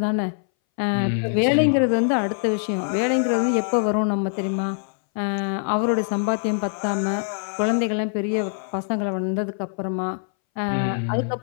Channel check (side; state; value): right; silent; 61 dB below the other